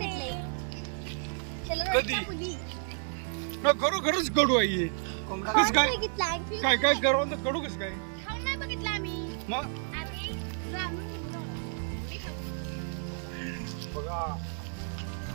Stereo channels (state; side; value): silent; left; 57 dB below the other